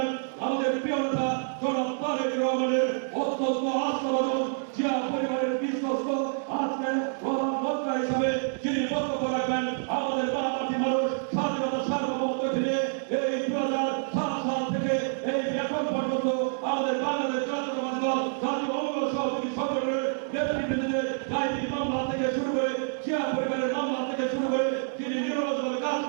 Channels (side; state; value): left; silent; digital silence